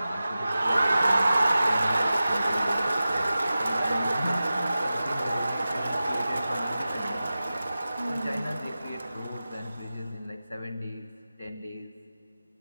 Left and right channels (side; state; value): both; inverted; correlation -0.94